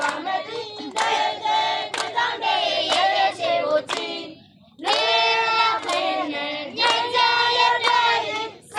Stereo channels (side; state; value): both; identical; correlation 1.00